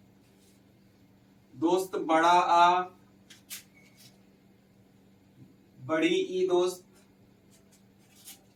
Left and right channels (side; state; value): both; identical; correlation 1.00